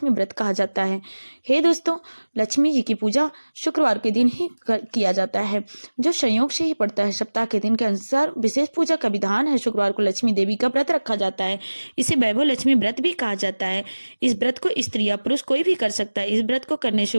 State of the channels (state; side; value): inverted; both; correlation -1.00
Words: व्रत कहा जाता है। हे दोस्तों, लक्ष्मी जी की पूजा शुक्रवार के दिन ही किया जाता है, जो संयोग से ही पड़ता है। सप्ताह के दिन के अनुसार विशेष पूजा का विधान है। शुक्रवार को लक्ष्मी देवी का व्रत रखा जाता है, इसे वैभव लक्ष्मी व्रत भी कहा जाता है। इस व्रत को स्त्री या पुरुष कोई भी कर सकता है। इस व्रत को करने से